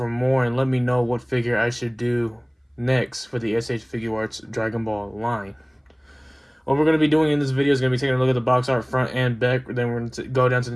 more, and let me know what figure I should do next for the SH Figuarts Dragon Ball line. What we're going to be doing in this video is going to be taking a look at the box art front and back. Then we're going to go down to the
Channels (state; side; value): identical; both; correlation 1.00